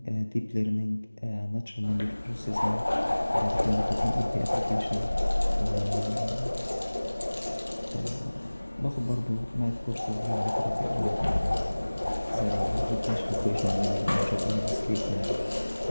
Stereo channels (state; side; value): inverted; both; correlation -1.00